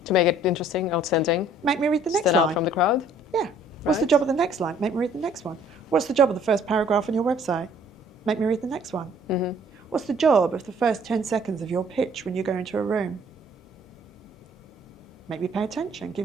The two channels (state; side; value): normal; both; correlation 0.58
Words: To make it interesting, outstanding. Make me read the next Stand line. out from the crowd. Yeah. What's the job of the next line? Make me read the next one. What's the job of the first paragraph on your website? Make me read the next one. What's the job of the first 10 seconds of your pitch when you go into a room? Make me pay attention.